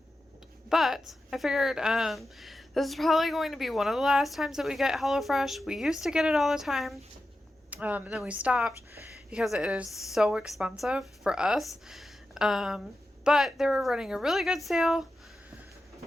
But I figured this is probably going to be one of the last times that we get HelloFresh. We used to get it all the time. And then we stopped because it is so expensive for us. But they were running a really good sale.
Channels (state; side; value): normal; both; correlation 0.91